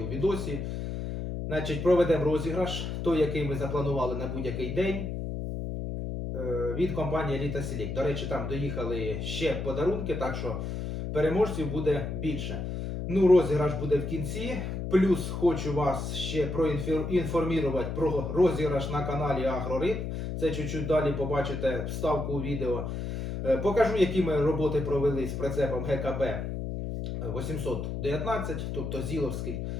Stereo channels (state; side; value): noise; left; hum, 4 dB below the sound